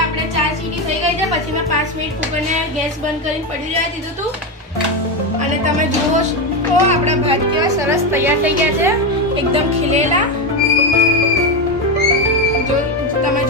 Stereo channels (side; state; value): both; normal; correlation 0.12